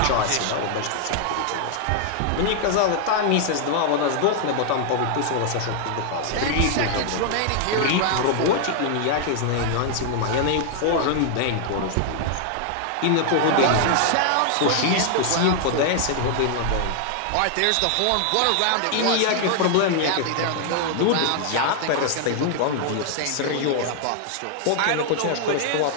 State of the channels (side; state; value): both; different; correlation 0.00